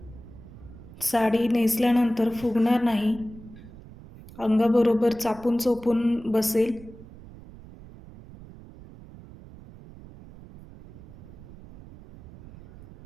साडी नेसल्यानंतर फुगणार नाही, अंगाबरोबर चापून चोपून बसेल.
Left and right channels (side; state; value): right; noise; rumble, 18 dB below the sound